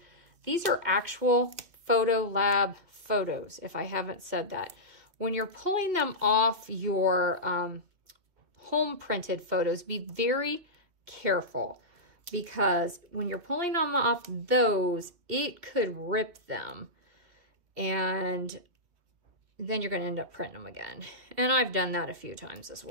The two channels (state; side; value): late; left; 2.7 ms